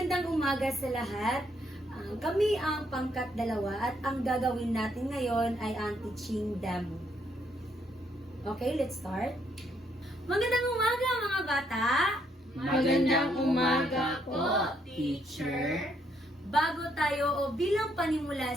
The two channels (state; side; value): normal; both; correlation 0.72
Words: umaga sa lahat. Kami ang pangkat 2 at ang gagawin natin ngayon ay ang teaching demo. Okay, let's start. Magandang umaga mga bata! Magandang umaga po, teacher. Bago tayo o bilang